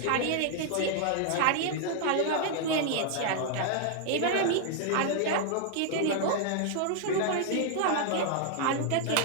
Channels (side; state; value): both; different; correlation 0.00